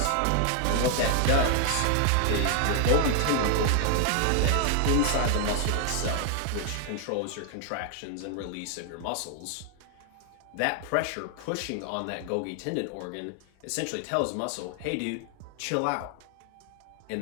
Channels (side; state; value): both; different; correlation 0.00